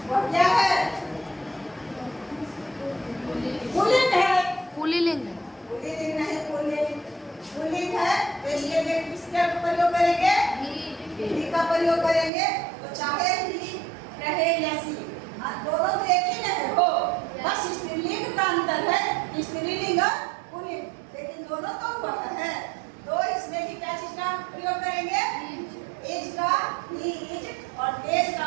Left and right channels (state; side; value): drops out; left; at 12.3 s